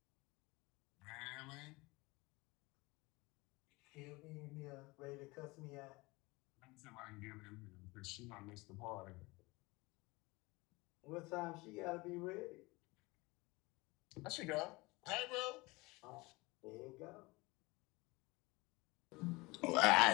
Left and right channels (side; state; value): right; quieter; 23.5 dB